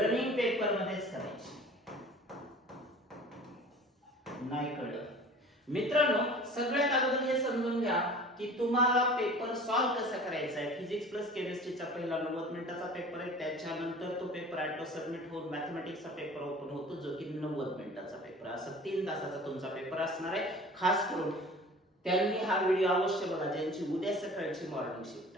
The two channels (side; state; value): both; normal; correlation 0.43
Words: पेपर मध्येच करायची. नाही कळलं मित्रांनो, सगळ्यात अगोदर हे समजून घ्या की तुम्हाला पेपर सॉल्व्ह कसा करायचा आहे. फिजिक्स प्लस केमिस्ट्रीचा पहिला 90 मिनिटाचा पेपर आहे, त्याच्यानंतर तो पेपर ऑटो सबमिट होऊन मॅथमॅटिक्सचा पेपर ओपन होतो, जो की 90 मिनिटाचा पेपर. असं 3 तासाचा तुमचा पेपर असणार आहे. खास करून त्यांनी हा व्हिडिओ अवश्य बघा ज्यांची उद्या सकाळची मॉर्निंग